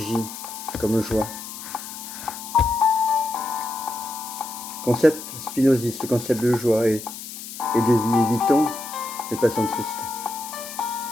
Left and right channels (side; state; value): left; noise; hiss, 11 dB below the sound